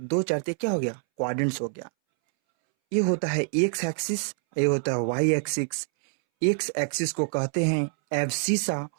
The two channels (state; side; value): silent; left; 61 dB below the other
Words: 4 तो क्या हो गया? क्वाड्रेंट्स हो गया। ये होता है एक्स एक्सिस, ये होता है वाई एक्सिस। एक्स एक्सिस को कहते हैं एब्सिसा